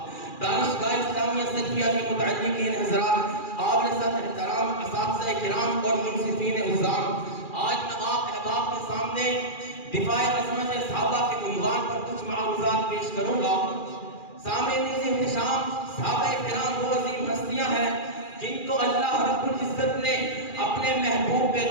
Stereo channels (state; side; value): late; right; 2.4 ms